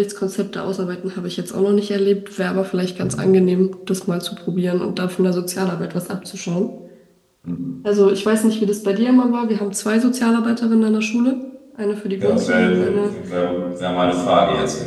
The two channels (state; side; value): identical; both; correlation 1.00